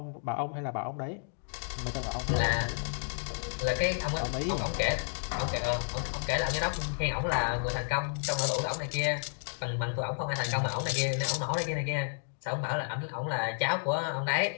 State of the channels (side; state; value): right; silent; digital silence